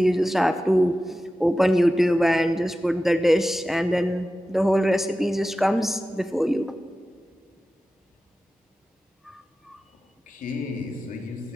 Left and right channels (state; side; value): normal; both; correlation 0.94